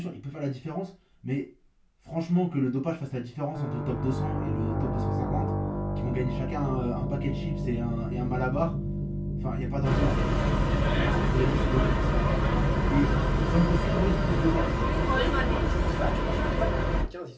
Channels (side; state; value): both; identical; correlation 1.00